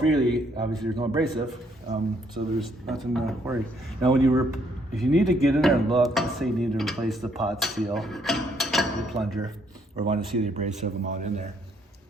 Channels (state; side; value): normal; both; correlation 0.69